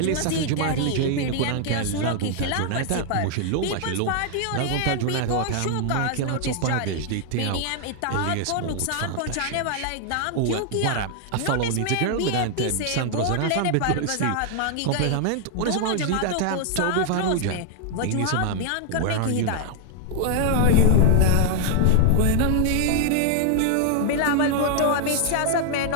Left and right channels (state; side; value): different; both; correlation 0.00